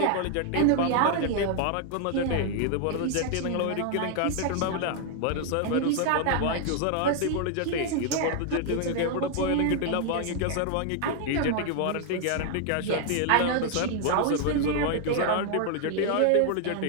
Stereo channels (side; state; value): both; different; correlation 0.00